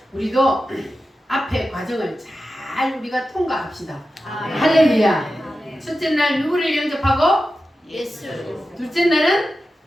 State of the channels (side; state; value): both; normal; correlation 0.92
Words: 우리도 앞에 과정을 잘 우리가 통과합시다. 할렐루야. 첫째 날 누구를 영접하고? 예수. 둘째 날은